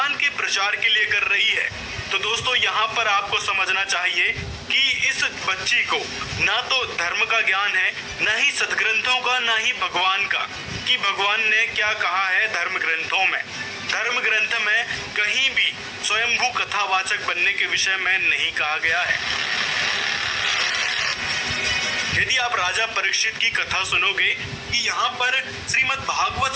के प्रचार के लिए कर रही है। तो दोस्तों यहाँ पर आपको समझना चाहिए कि इस बच्ची को ना तो धर्म का ज्ञान है, ना ही सदग्रंथों का, ना ही भगवान का, कि भगवान ने क्या कहा है धर्म ग्रंथों में। धर्म ग्रंथ में कहीं भी स्वयंभू कथावाचक बनने के विषय में नहीं कहा गया है। यदि आप राजा परीक्षित की कथा सुनोगे कि यहाँ पर श्रीमद् भागवत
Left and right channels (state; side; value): identical; both; correlation 1.00